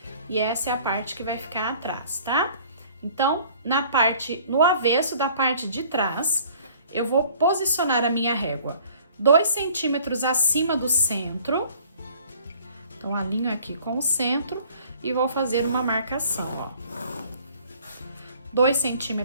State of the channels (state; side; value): inverted; both; correlation -0.53